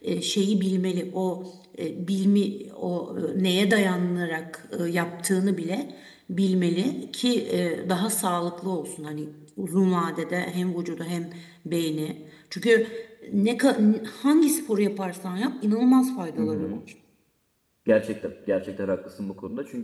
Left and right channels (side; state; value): both; identical; correlation 1.00